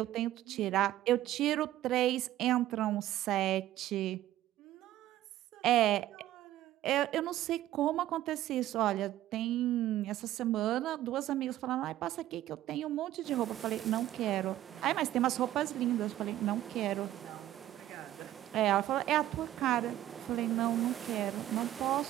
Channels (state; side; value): quieter; left; 13.7 dB